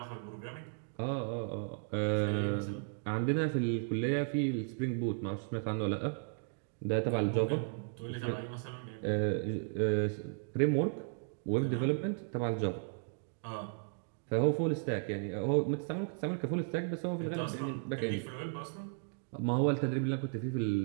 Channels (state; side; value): silent; left; digital silence